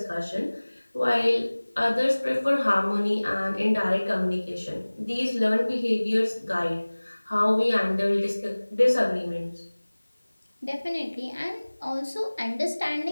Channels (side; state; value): both; inverted; correlation -1.00